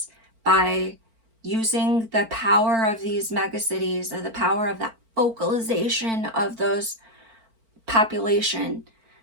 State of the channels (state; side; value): late; left; 4.4 ms